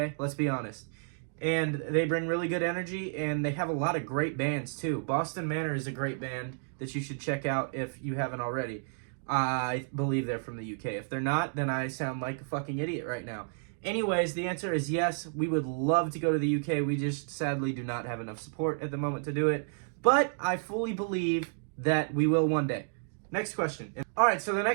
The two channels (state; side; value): silent; left; digital silence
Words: Let's be honest. And they bring really good energy, and they have a lot of great bands, too. Boston Manor is a great band that you should check out if you haven't already. I believe they're from the UK. If they're not, then I sound like a fucking idiot right now. Anyways, the answer is yes. We would love to go to the UK. We just sadly do not have enough support at the moment to do it. But I fully believe that we will one day. Next question. Alright, so the